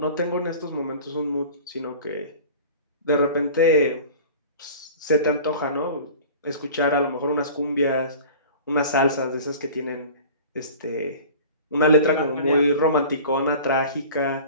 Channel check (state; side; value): inverted; both; correlation -0.41